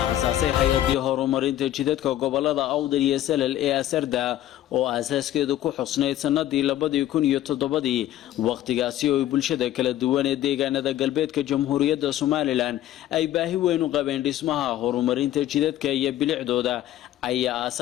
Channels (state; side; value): quieter; right; 13.2 dB